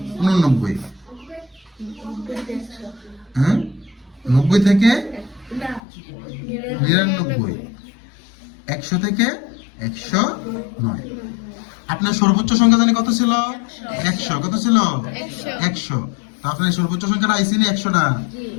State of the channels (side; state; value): right; drops out; at 5.8 s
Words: 89, হ্যাঁ 90 থেকে 99, 100 থেকে 109। আপনার সর্বোচ্চ সংখ্যা জানি কত ছিল? 100। কত ছিল? 100। তো আপনার সর্বোচ্চ সংখ্যাটা আইসি নি 100টা?